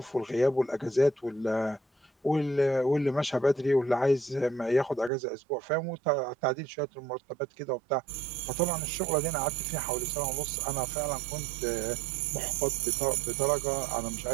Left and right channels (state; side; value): drops out; left; at 5.1 s